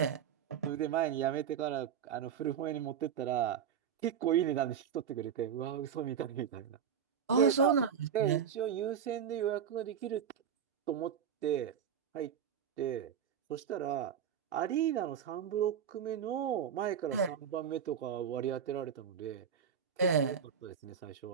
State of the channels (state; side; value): quieter; left; 8.1 dB